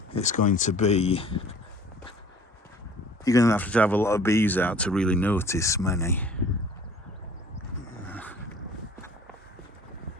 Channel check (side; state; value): both; normal; correlation 0.51